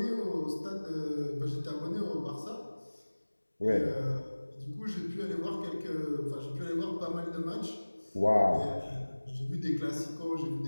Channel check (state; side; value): inverted; both; correlation -1.00